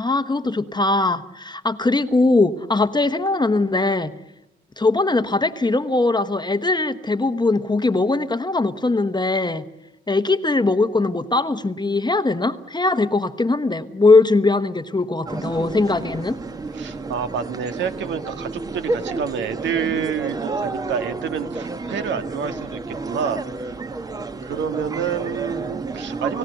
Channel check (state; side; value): normal; both; correlation 0.66